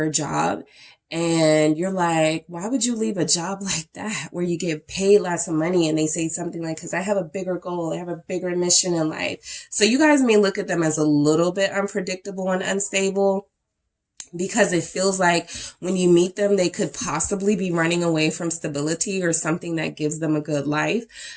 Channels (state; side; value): identical; both; correlation 1.00